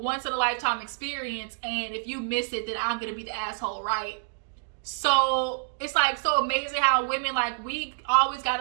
experience, and if you miss it, then I'm going to be the asshole, right? So it's like so amazing how women, like, we always got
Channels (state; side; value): silent; left; digital silence